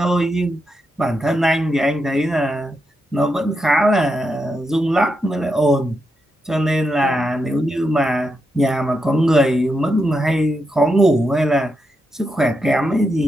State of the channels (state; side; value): normal; both; correlation 0.84